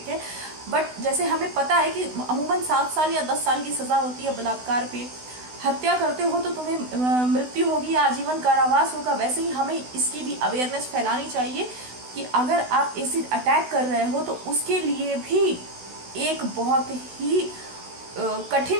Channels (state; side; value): late; left; 16 ms